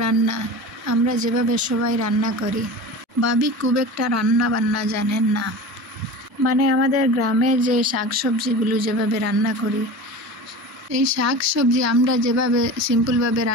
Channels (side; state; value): both; normal; correlation 0.33